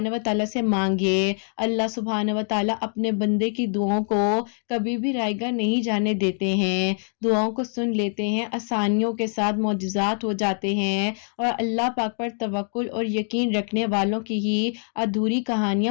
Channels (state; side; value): silent; right; 56 dB below the other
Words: व तआला से मांगिए। अल्लाह सुब्हान व तआला अपने बंदे की दुआओं को कभी भी रायगा नहीं जाने देते हैं, दुआओं को सुन लेते हैं, आसानियों के साथ मौजज़ात हो जाते हैं। और अल्लाह पाक पर तवक्कुल और यकीन रखने वालों की ही अधूरी